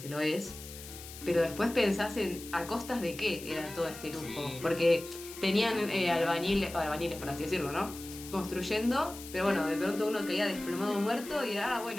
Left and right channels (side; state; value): left; noise; hiss, 14 dB below the sound